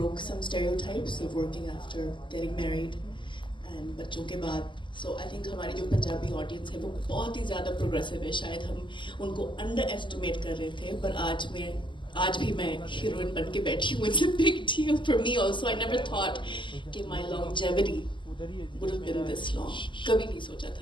some stereotypes of working after getting married and बच्चों के बाद। So I think हमारी जो Punjabi audience है वो बहुत ही ज़्यादा progressive है। शायद हम उनको अंडर एस्टिमेट कर रहे थे, पर आज भी मैं हीरोइन बन के बैठी हूँ। It's a big deal for me also. I never thought कि my longevity would have been this long. कभी नहीं सोचा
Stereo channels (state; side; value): late; right; 0.24 ms